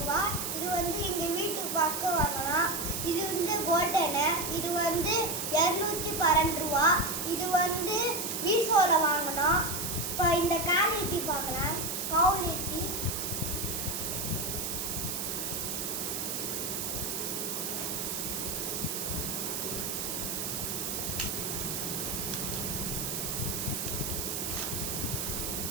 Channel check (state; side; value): noise; right; hiss, 2 dB below the sound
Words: இது வந்து எங்கள் வீட்டுக்கு பார்க்க வாங்கலாம். இது வந்து கோல்டனு. இது வந்து 212 ரூபா. இது வந்து மீஷோவில் வாங்கினோம். இப்போ இந்த குவாலிட்டி பார்க்கலாம். குவாலிட்டி